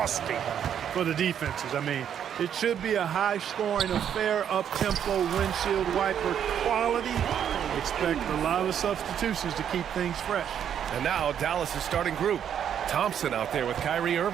for the defenses. I mean, it should be a high-scoring affair, up-tempo, windshield wiper quality. Expect a lot of substitutions to keep things fresh. And now Dallas' starting group. Thompson out there with Kyrie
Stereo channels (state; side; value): quieter; left; 9.0 dB